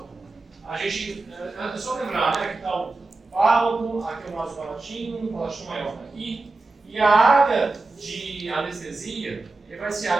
a gente, é só lembrar, né, que está o fálago, aqui é o vaso palatino maior está aqui, e a área de anestesia vai ser a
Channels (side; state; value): left; quieter; 3.4 dB